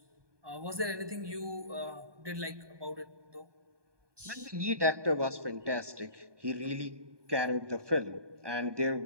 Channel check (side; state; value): left; late; 1.2 ms